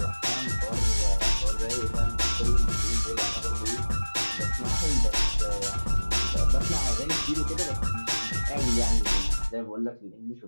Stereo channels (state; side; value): inverted; both; correlation -1.00